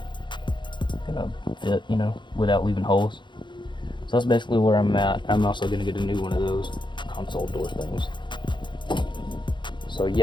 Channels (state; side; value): late; right; 0.23 ms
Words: fit, without leaving holes. So that's basically where I'm at. I'm also gonna get a new one of those console door things. So